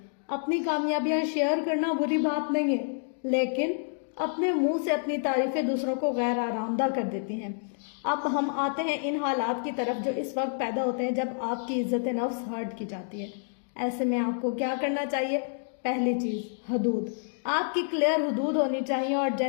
اپنی کامیابیاں شیئر کرنا بری بات نہیں ہے، لیکن اپنے منہ سے اپنی تعریفیں دوسروں کو غیر آرامدہ کر دیتی ہیں. اب ہم آتے ہیں ان حالات کی طرف جو اس وقت پیدا ہوتے ہیں جب آپ کی عزت نفس ہرٹ کی جاتی ہے. ایسے میں آپ کو کیا کرنا چاہیے؟ پہلی چیز، حدود. آپ کی کلیئر حدود ہونی چاہیے اور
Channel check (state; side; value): silent; right; digital silence